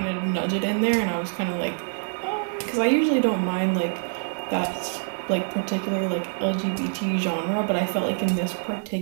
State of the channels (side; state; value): left; silent; digital silence